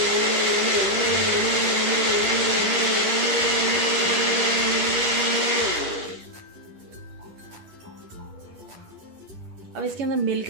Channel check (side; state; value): left; late; 10 ms